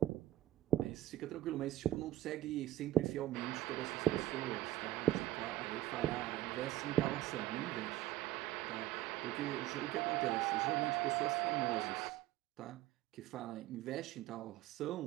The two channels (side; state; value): left; quieter; 14.8 dB